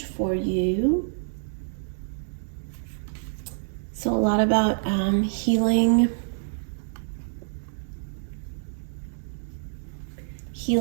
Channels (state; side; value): silent; left; digital silence